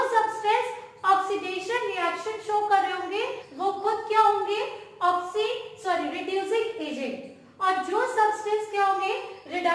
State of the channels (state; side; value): identical; both; correlation 1.00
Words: सब्सटेंस ऑक्सीडेशन रिएक्शन शो कर रहे होंगे वो खुद क्या होंगे? Reducing agent. और जो सब्सटेंस क्या होंगे?